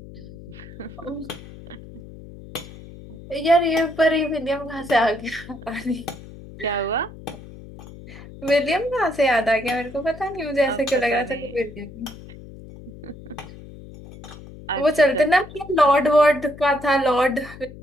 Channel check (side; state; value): left; noise; hum, 16 dB below the sound